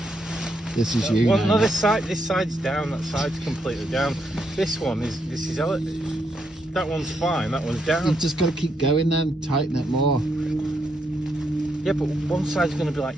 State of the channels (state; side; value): normal; both; correlation 0.78